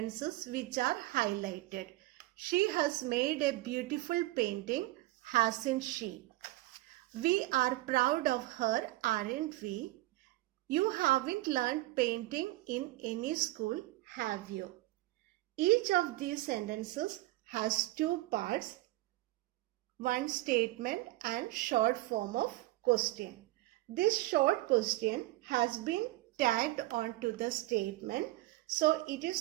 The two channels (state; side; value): quieter; left; 18.5 dB